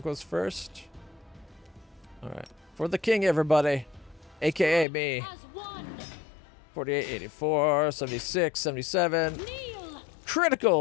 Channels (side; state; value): right; drops out; at 4.9 s